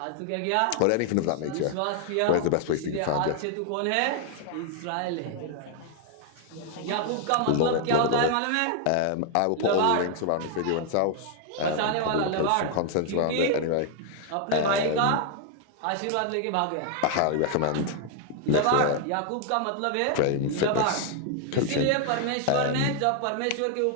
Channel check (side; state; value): both; different; correlation 0.00